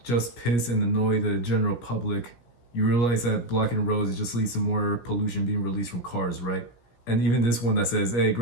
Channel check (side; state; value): right; late; 17 ms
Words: just piss and annoy the general public. You realize that blocking roads just leads to more pollution being released from cars, right? And even this one that says, "Hey,